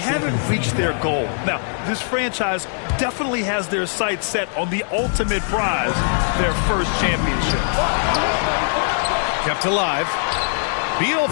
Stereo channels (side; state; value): right; silent; digital silence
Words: reached their goal. Now, this franchise definitely has their sights set on the ultimate prize, their first championship. Kept alive. Beal